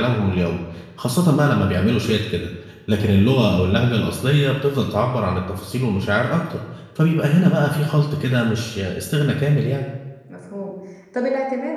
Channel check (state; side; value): identical; both; correlation 1.00